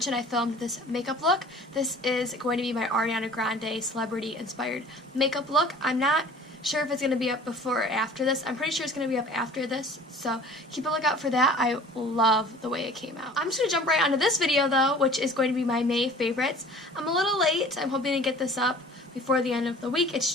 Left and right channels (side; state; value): both; normal; correlation 0.46